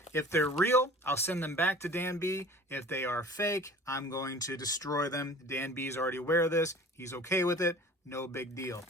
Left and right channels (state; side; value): normal; both; correlation 0.44